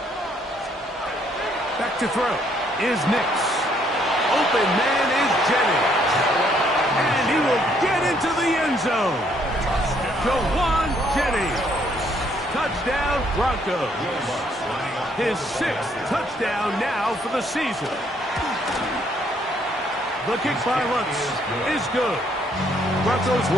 Back to throw is Nix. Open man is Jennings. And he will get into the end zone. Jawan Jennings. Touchdown, Broncos. His 6th touchdown now for the season. The kick by Lutz is good. Broncos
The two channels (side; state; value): both; normal; correlation 0.68